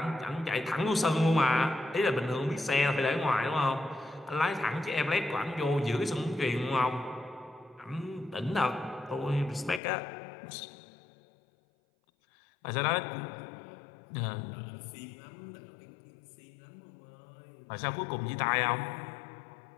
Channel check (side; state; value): right; drops out; at 9.8 s